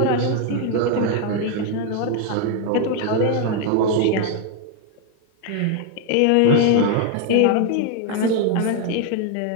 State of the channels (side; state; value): both; different; correlation 0.01